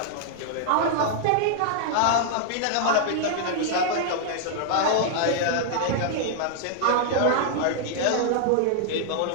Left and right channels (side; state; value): both; different; correlation -0.01